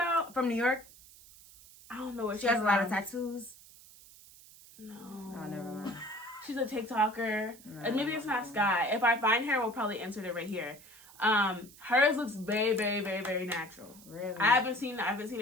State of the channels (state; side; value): noise; right; hiss, 21 dB below the sound